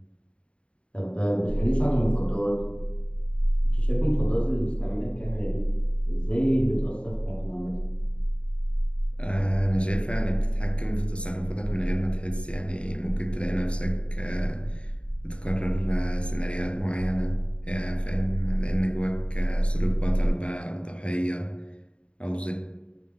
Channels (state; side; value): late; right; 0.057 ms